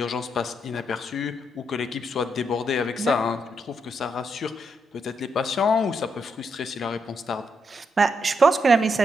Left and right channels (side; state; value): both; normal; correlation 0.79